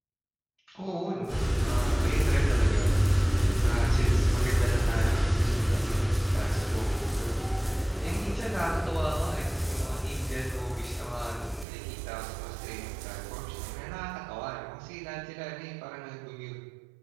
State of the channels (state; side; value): drops out; left; at 11.7 s